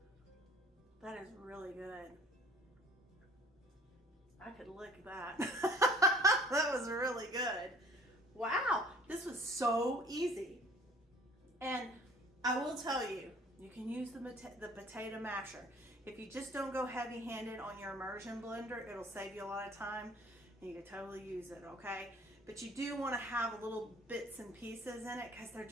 That is really good. I could lick that. That was really good. Wow, this was so easy. And I will tell you, you can use the potato masher. If you just don't go heavy-handed on your immersion blender, it'll save you a lot of time, and you can totally use it, okay? But you do want to have little bits and pieces in it because they're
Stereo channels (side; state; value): both; normal; correlation 0.52